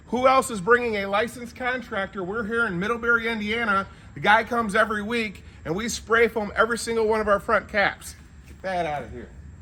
who else is bringing a licensed contractor. We're here in Middlebury, Indiana. The guy comes every week, and we spray foam every single one of our front caps. Get that out of here.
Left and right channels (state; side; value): identical; both; correlation 1.00